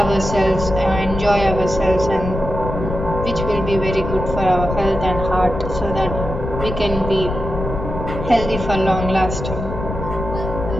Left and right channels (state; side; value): noise; left; rumble, 6 dB below the sound